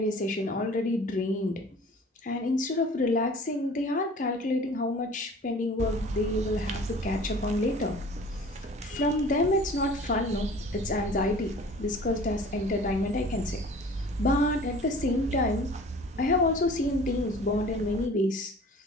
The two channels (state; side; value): normal; both; correlation 0.46